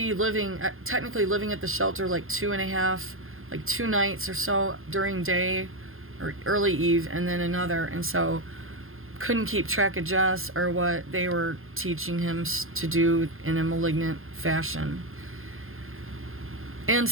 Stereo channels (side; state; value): left; late; 0.60 ms